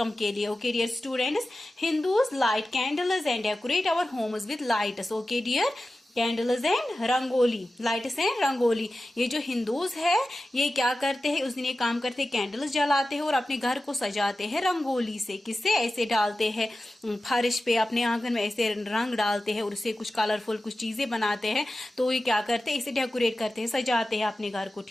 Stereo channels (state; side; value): normal; both; correlation 0.94